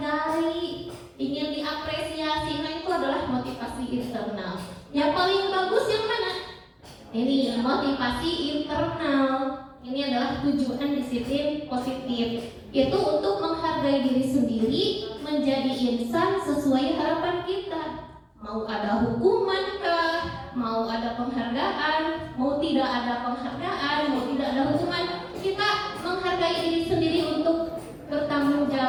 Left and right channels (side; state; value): both; identical; correlation 1.00